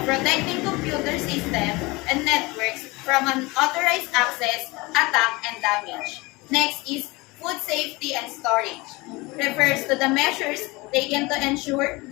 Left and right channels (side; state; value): right; quieter; 23.5 dB